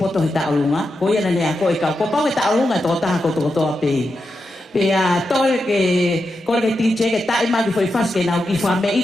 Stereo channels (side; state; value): both; normal; correlation 0.88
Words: tau lunga. Ko ia ne ko ka ko pa tau lunga to ta ko toa pe. Tole ke kole tinche ke tai ma ki foi fas ke nau ki fa me